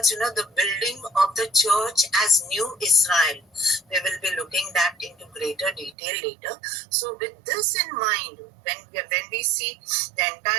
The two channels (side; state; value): left; drops out; at 6.0 s